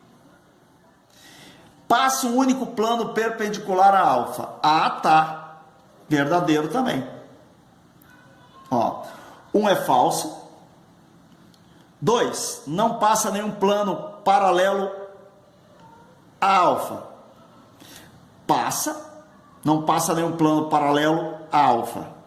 Passa um único plano perpendicular a alfa. Ah, tá. Verdadeiro também. Ó, um é falso. 2, não passa nenhum plano paralelo a alfa. Passa, não passa nenhum plano paralelo a alfa.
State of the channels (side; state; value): both; identical; correlation 1.00